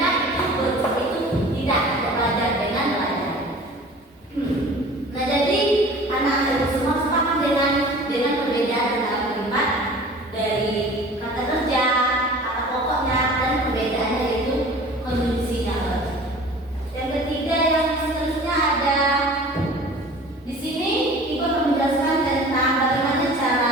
itu tidak belajar dengan belajar. Nah, jadi anak-anak itu semua sepakat dengan perbedaan dalam kalimat dari kata kerja, kata pokoknya, dan perbedaannya itu konjungsinya. Yang ketiga yang seterusnya ada di sini Ibu akan menjelaskan tentang bagaimana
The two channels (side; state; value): both; normal; correlation 0.43